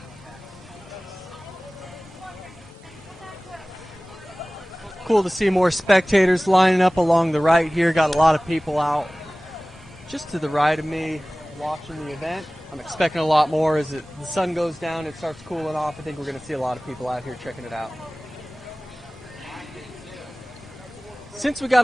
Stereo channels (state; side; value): normal; both; correlation 0.98